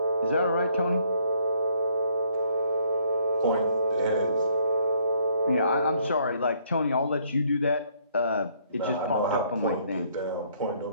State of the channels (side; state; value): both; inverted; correlation -0.66